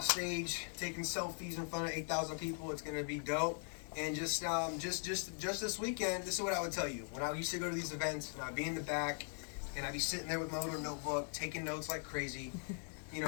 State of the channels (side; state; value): right; silent; 51 dB below the other